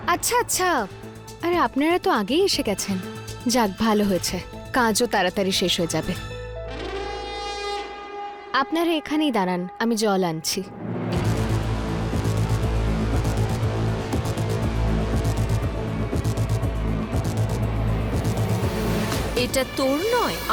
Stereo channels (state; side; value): identical; both; correlation 1.00